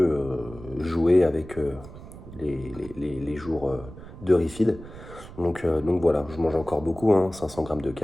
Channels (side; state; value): right; noise; rumble, 16 dB below the sound